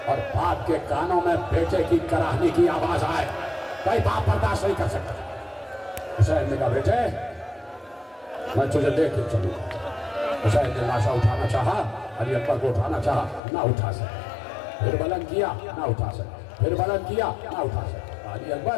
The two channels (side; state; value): right; drops out; at 13.4 s